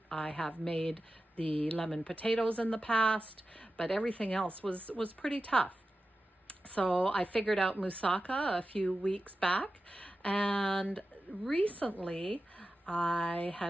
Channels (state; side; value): normal; both; correlation 0.93